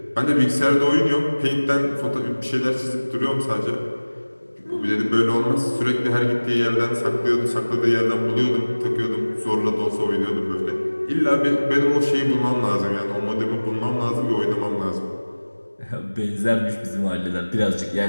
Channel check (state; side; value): inverted; both; correlation -1.00